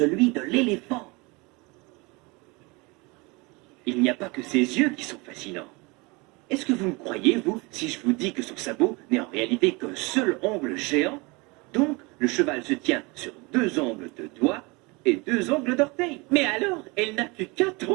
de l'éléphant. Il n'y a pas que ses yeux qui sont fascinants. Est-ce que vous me croyez, vous, si je vous dis que son sabot n'est en réalité qu'un seul ongle géant? Donc, le cheval se tient sur 2 ongles de doigts et 2 ongles d'orteil. Mais alors, elle n'a que 4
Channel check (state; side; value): quieter; left; 26.4 dB